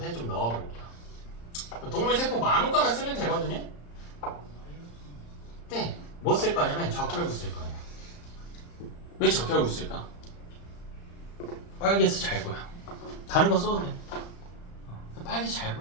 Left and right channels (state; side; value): late; right; 35 ms